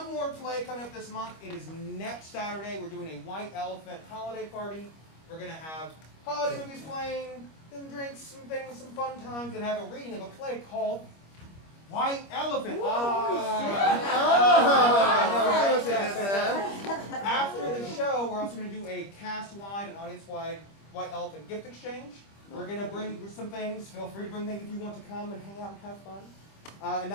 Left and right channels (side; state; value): right; late; 25 ms